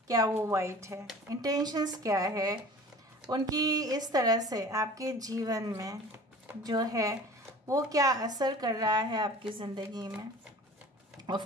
क्या वो वाइट है, इंटेंशंस क्या है उनकी, इस तरह से आपके जीवन में जो है वो क्या असर कर रहा है आपकी ज़िंदगी में।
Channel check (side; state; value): both; normal; correlation 0.43